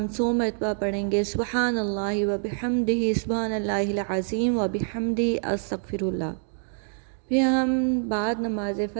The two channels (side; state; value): left; silent; 61 dB below the other